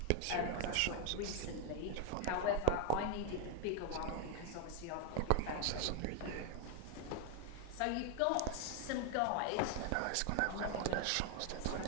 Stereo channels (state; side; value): different; both; correlation 0.01